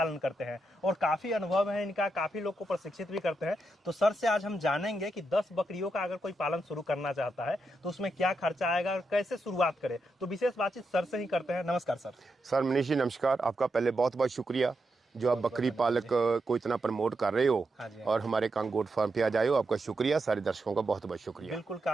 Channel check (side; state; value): both; normal; correlation 0.85